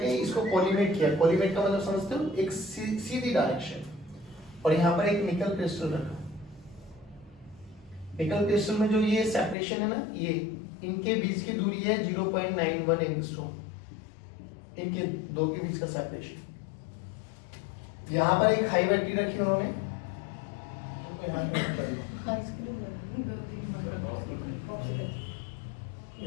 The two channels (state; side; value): drops out; right; at 9.6 s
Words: इसको कोलिमेट किया। कोलिमेट का मतलब समझते हो, एक सीधी डायरेक्शन, और यहाँ पर एक निकल क्रिस्टल रखा। निकल क्रिस्टल में जो ये सेपरेशन है ना, ये इनके बीच की दूरी है 0.91 एंगस्ट्रॉम, इनके दो के बीच का सेपरेशन। यहाँ पर एक हाई बैटरी रखी उन्होंने,